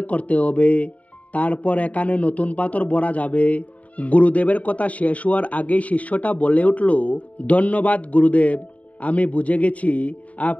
করতে হবে, তারপর এখানে নতুন পাথর ভরা যাবে। গুরুদেবের কথা শেষ হওয়ার আগেই শিষ্যটা বলে উঠল, ধন্যবাদ গুরুদেব, আমি বুঝে গেছি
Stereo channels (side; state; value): right; late; 0.069 ms